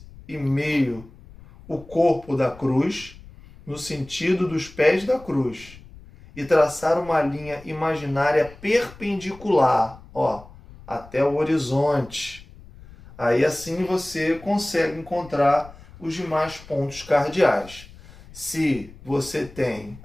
e meio o corpo da cruz, no sentido dos pés da cruz, e traçar uma linha imaginária perpendicular, ó, até o horizonte. Aí assim você consegue encontrar os demais pontos cardeais. Se você tem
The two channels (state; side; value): noise; left; rumble, 20 dB below the sound